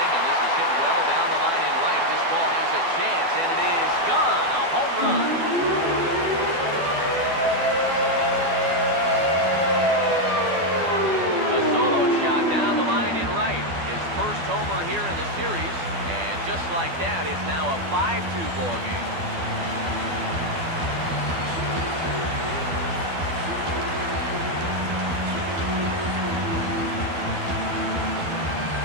and this is hit well down the line in right. This ball has a chance, and it is gone. A home run. A solo shot down the line in right. His first homer here in the series, and just like that, it's now a 5-2 ball game.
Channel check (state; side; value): late; left; 12 ms